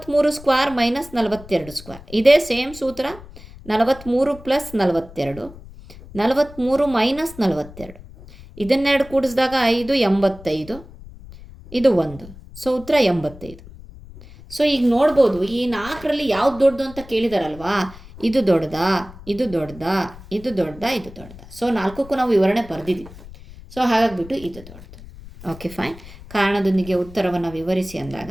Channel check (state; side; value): noise; left; rumble, 18 dB below the sound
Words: square minus 42 square. ಇದೇ ಸೇಮ್ ಸೂತ್ರ. 43 ಪ್ಲಸ್ 42, 43 ಮೈನಸ್ 42. ಇದನ್ನೆರಡು ಕೂಡಿಸಿದಾಗ 5 85, ಇದು 1. ಸೊ ಉತ್ತರ 85. ಸೊ ಈಗ ನೋಡ್ಬೋದು ಈ 4ರಲ್ಲಿ ಯಾವ್ದು ದೊಡ್ಡದು ಅಂತ ಕೇಳಿದಾರಲ್ವಾ. ಇದು ದೊಡ್ಡದಾ, ಇದು ದೊಡ್ಡದಾ, ಇದು ದೊಡ್ಡದಾ, ಇದು ದೊಡ್ಡದಾ. ಸೊ 4ಕ್ಕೂ ನಾವು ವಿವರಣೆ ಬರೆದಿದ್ದೀವಿ. ಸೊ ಹಾಗಾಗಿಬಿಟ್ಟು ಇದು ದೊಡ್ಡದು. Okay fine. ಕಾರಣದೊಂದಿಗೆ ಉತ್ತರವನ್ನು ವಿವರಿಸಿ ಅಂದಾಗ